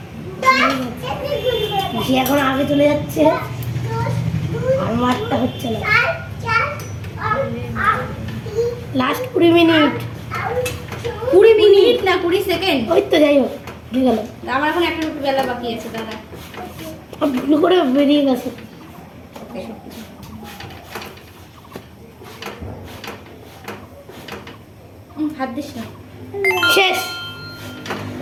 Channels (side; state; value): both; identical; correlation 1.00